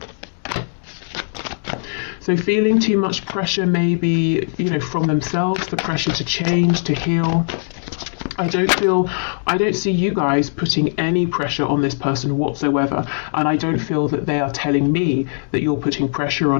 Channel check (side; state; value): right; silent; digital silence